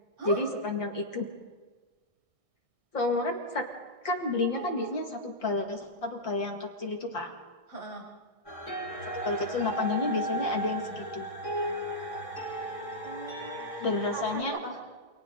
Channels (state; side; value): late; left; 1.6 ms